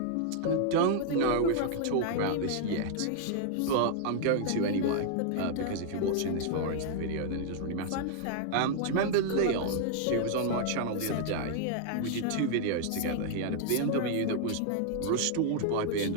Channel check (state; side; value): different; both; correlation -0.01